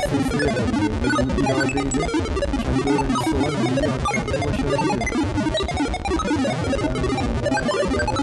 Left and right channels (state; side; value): identical; both; correlation 1.00